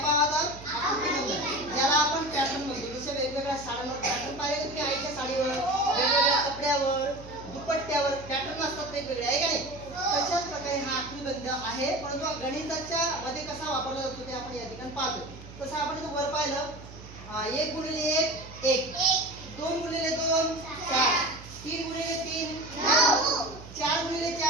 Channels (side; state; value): right; noise; hum, 16 dB below the sound